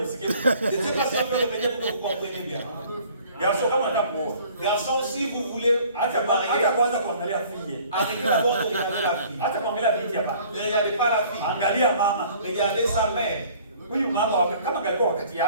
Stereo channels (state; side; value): inverted; both; correlation -0.53